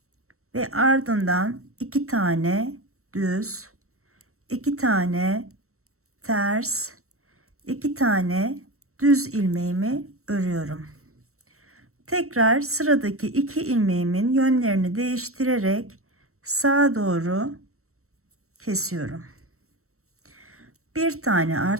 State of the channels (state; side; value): late; left; 0.63 ms